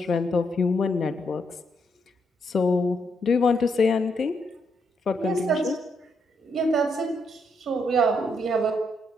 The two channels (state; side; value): normal; both; correlation 0.77